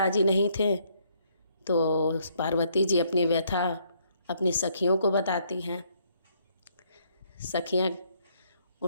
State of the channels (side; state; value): both; inverted; correlation -0.69